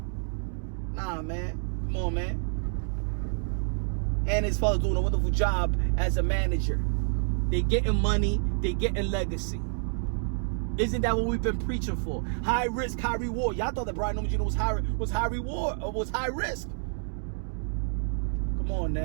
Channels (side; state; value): left; silent; 59 dB below the other